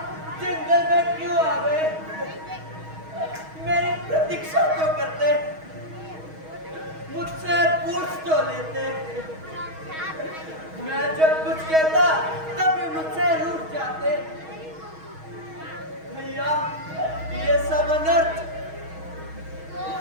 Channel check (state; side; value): late; left; 6.3 ms